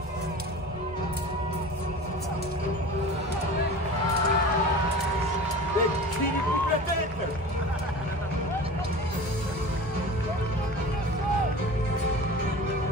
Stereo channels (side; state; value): both; normal; correlation 0.36